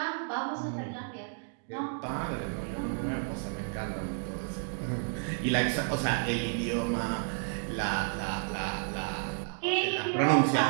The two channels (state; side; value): silent; left; 57 dB below the other